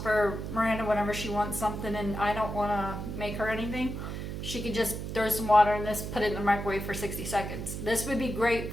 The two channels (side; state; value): right; noise; hum, 6 dB below the sound